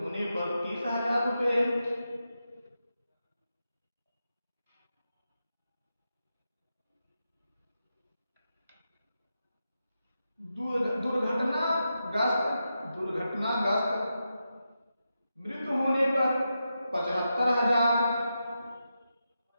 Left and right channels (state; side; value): inverted; both; correlation -0.88